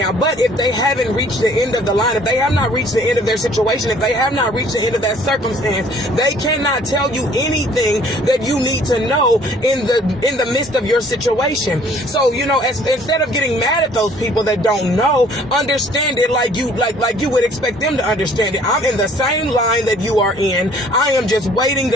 But if they haven't reached the end of the line, if they have not reached the end of their situation, if they have not reached the end of that circumstance, they cannot tell you anything that you need to know in the midst of your situation. So, instead of getting mad at those people that don't know, understand it like you would expect them to understand it. I'm in the same line that you are in. I am just waiting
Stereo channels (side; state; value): both; normal; correlation 0.57